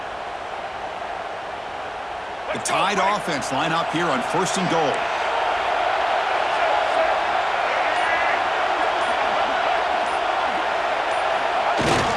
The Tide offense line up here on 1st and goal.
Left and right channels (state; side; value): identical; both; correlation 1.00